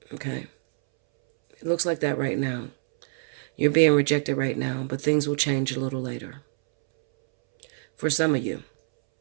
Okay? It looks like that right now. You're being rejected right now, but things will change a little later. For some of you.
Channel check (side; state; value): left; silent; 61 dB below the other